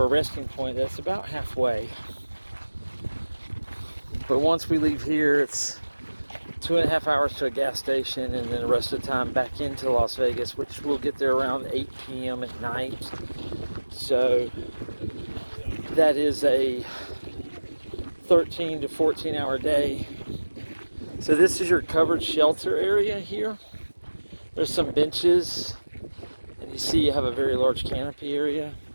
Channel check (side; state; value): both; inverted; correlation -1.00